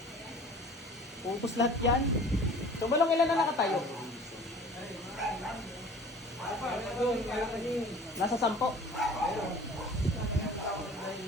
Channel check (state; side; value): normal; both; correlation 0.46